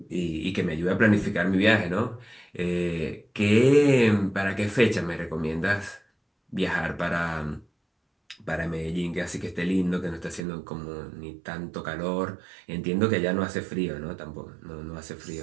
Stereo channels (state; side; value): drops out; left; at 10.5 s